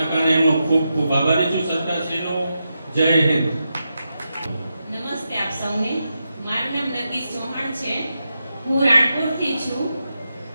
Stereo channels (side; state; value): both; inverted; correlation -0.87